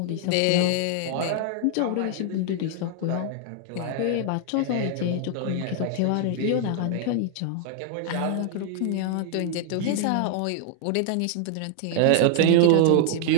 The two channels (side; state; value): both; different; correlation 0.00